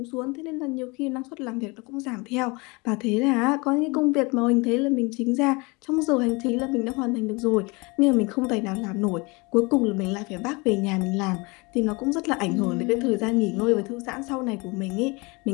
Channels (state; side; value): quieter; right; 27.0 dB